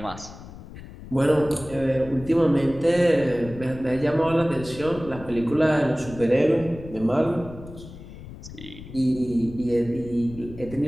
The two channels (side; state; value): left; noise; rumble, 15 dB below the sound